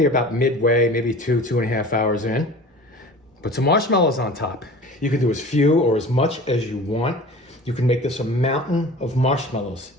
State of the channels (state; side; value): normal; both; correlation 0.40